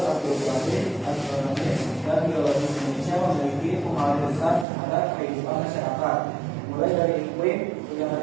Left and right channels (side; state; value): left; drops out; at 4.7 s